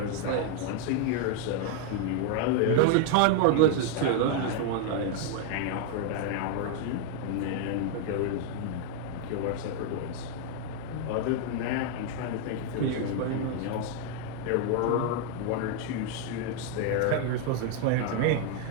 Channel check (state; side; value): different; both; correlation 0.00